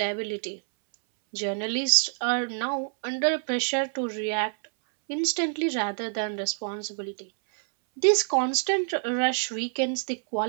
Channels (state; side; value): silent; left; 60 dB below the other